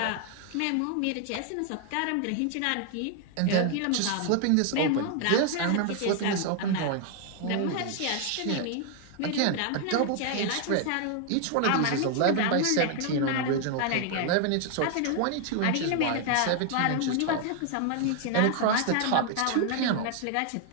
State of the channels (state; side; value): different; both; correlation 0.00